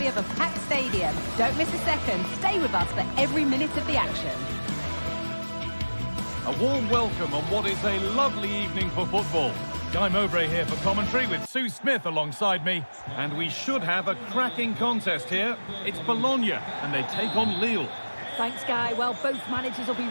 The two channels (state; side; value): inverted; both; correlation -1.00